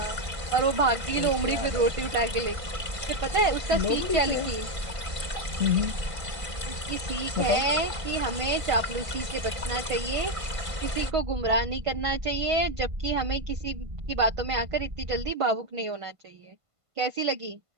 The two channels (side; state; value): left; late; 1.5 ms